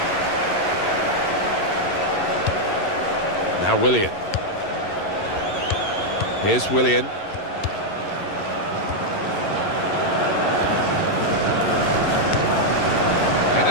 Now Willian. Here's Willian.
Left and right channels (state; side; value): late; right; 11 ms